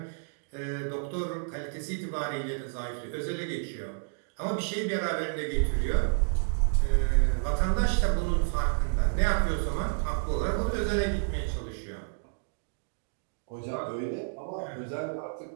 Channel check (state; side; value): silent; left; digital silence